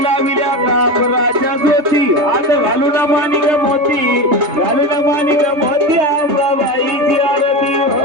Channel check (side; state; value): left; late; 3.3 ms